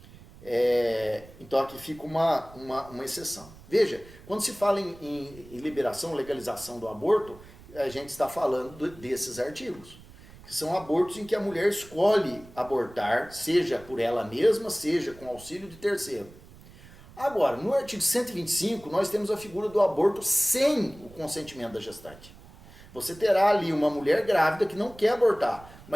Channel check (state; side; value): noise; right; rumble, 20 dB below the sound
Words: Então aqui fica uma exceção. Veja, quando se fala em liberação, legalização do aborto, a gente está falando desses artigos, que são abortos em que a mulher escolhe abortar, seja por ela mesma, seja com auxílio de terceiro. Agora, no artigo 125, nós temos a figura do aborto sem o consentimento da gestante. Você terá ali uma mulher grávida que não quer abortar,